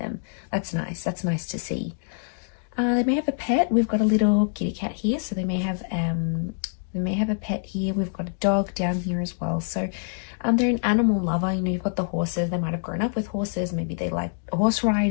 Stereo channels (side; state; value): right; silent; digital silence